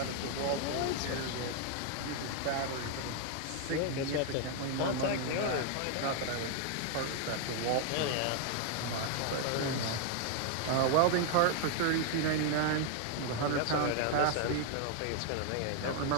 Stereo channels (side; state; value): both; different; correlation 0.00